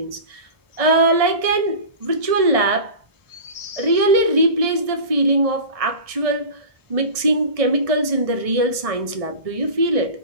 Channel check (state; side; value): late; left; 1.6 ms